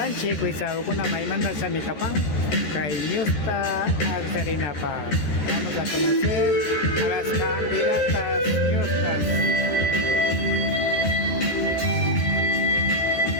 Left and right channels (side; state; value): right; late; 13 ms